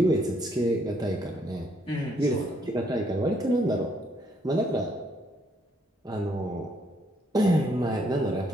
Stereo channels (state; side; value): normal; both; correlation 0.70